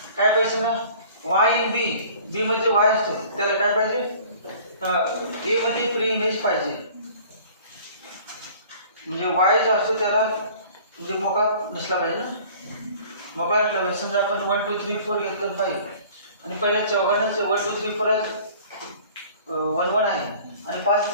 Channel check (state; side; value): inverted; both; correlation -0.49